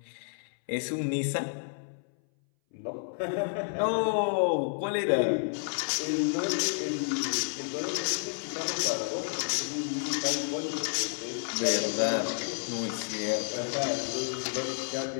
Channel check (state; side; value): silent; right; 58 dB below the other